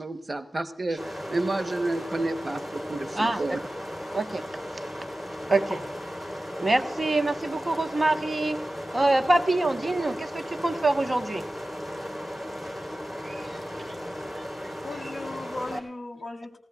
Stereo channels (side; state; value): both; normal; correlation 0.95